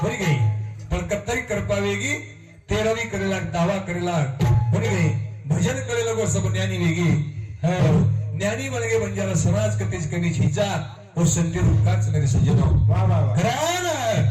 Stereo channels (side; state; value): both; identical; correlation 1.00